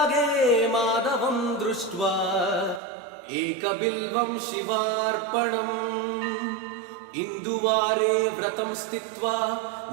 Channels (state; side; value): drops out; left; at 2.8 s